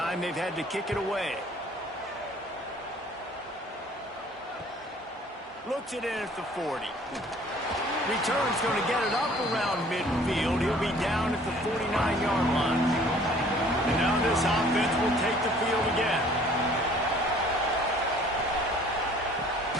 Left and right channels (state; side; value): normal; both; correlation 0.54